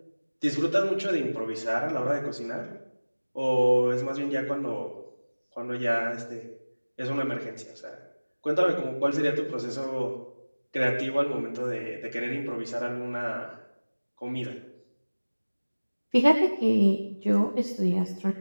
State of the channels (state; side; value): inverted; both; correlation -1.00